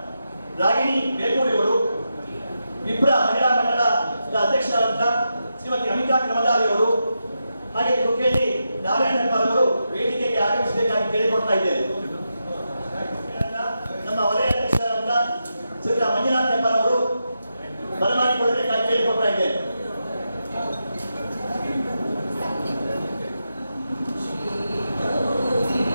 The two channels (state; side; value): inverted; both; correlation -0.87